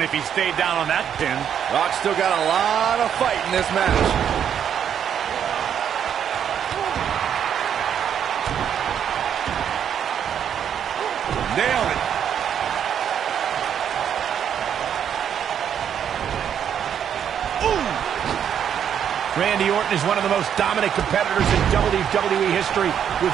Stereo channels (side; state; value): left; quieter; 8.7 dB